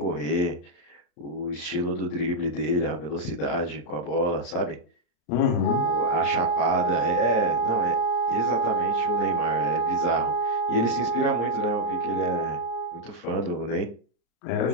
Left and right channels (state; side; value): late; right; 34 ms